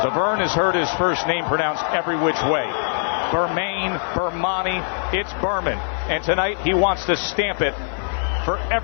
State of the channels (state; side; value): silent; right; 57 dB below the other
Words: has heard his first name pronounced every which way. Bermane, Bermane, it's Berman. And tonight he wants to stamp it for